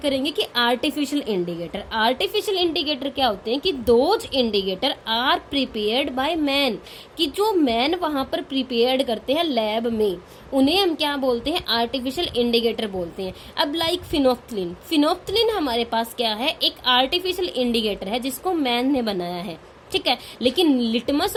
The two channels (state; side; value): identical; both; correlation 1.00